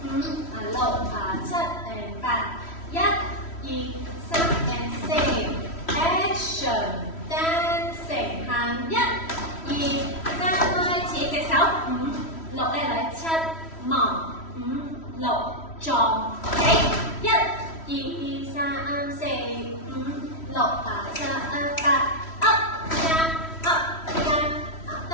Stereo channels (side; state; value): right; late; 3.1 ms